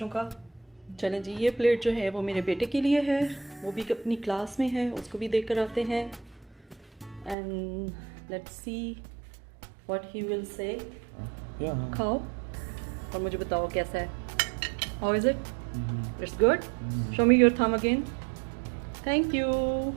का। चलें जी, ये प्लेट जो है वो मेरे बेटे के लिए है, वो भी अपनी क्लास में है, उसको भी देख कर आते हैं एंड लेट्स सी व्हाट ही विल से। खाओ और मुझे बताओ कैसा है। हाउ इज़ इट? It's good. Show me your thumb again. Thank you,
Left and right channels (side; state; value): left; drops out; at 7.4 s